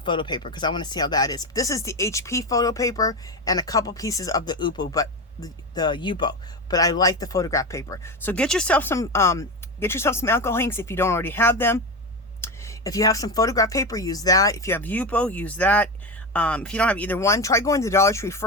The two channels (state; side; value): normal; both; correlation 0.19